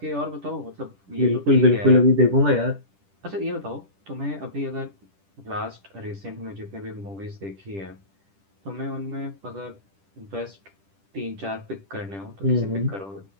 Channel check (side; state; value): left; late; 10 ms